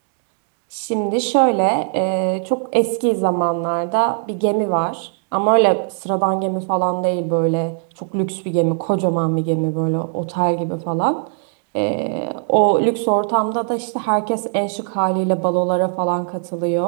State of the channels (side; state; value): left; silent; 63 dB below the other